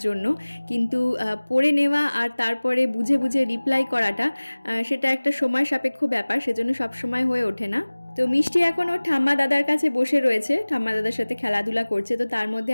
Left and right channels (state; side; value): inverted; both; correlation -1.00